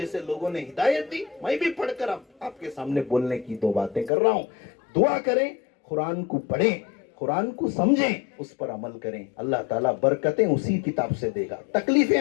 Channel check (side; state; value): right; drops out; at 4.1 s